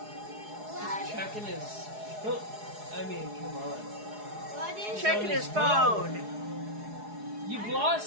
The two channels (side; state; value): left; late; 4.8 ms